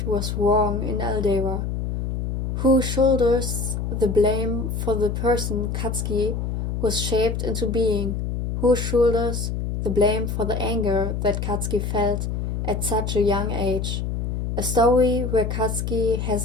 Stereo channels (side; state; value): left; noise; hum, 2 dB below the sound